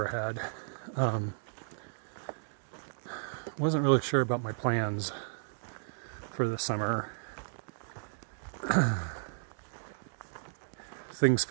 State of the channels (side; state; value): left; silent; digital silence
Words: had. Wasn't really sure about my plans for the summer. Things